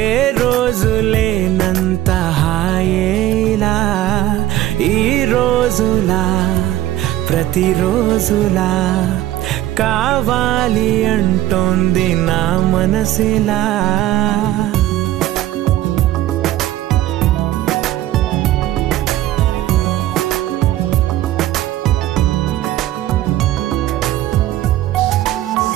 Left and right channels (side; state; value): left; quieter; 14.6 dB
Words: ఏ రోజు లేనంత హాయేలా ఈ రోజులా ప్రతిరోజులా కావాలి అంటోంది నా మనసిలా